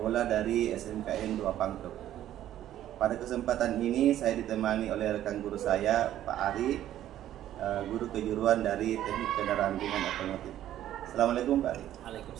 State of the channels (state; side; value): quieter; left; 12.3 dB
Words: dari SMKN 2 Pangkep. Pada kesempatan ini saya ditemani oleh rekan guru saya, Pak Ari, guru kejuruan dari Teknik Kendaraan Ringan Otomotif. Assalamualaikum Pak Ari.